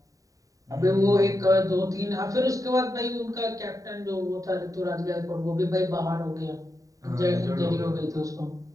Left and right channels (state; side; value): late; left; 0.16 ms